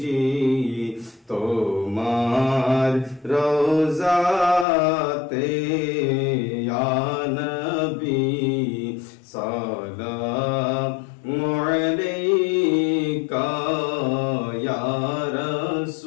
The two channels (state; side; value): drops out; right; at 4.7 s